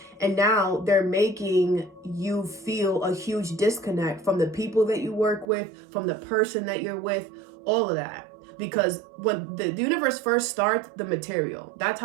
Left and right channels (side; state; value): left; drops out; at 5.5 s